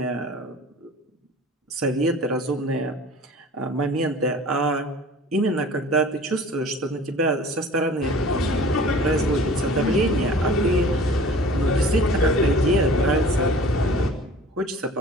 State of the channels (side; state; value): both; normal; correlation 0.45